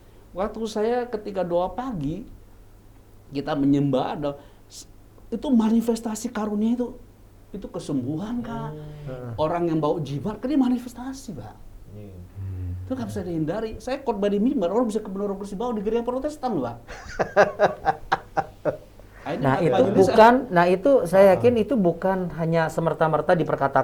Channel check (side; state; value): both; identical; correlation 1.00